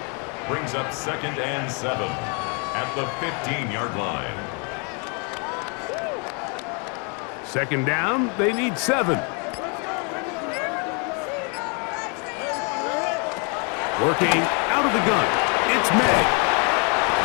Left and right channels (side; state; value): right; quieter; 35.4 dB